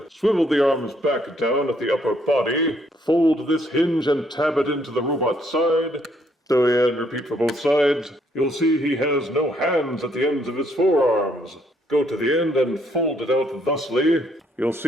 swivel the arms back down at the upper body, fold this hinge and tab it into the robot side. So yeah, and repeat for both sides. You'll see he has no hands at the ends of his forearms. Go to the end and fold it out thusly. You'll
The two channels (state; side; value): normal; both; correlation 0.69